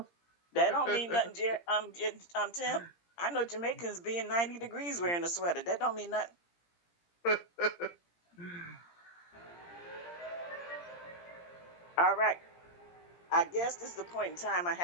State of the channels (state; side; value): late; right; 17 ms